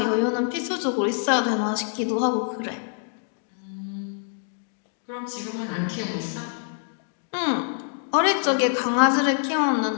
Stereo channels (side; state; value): right; silent; 57 dB below the other